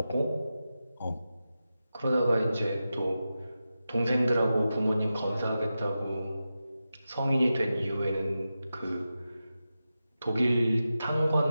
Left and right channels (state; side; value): inverted; both; correlation -0.92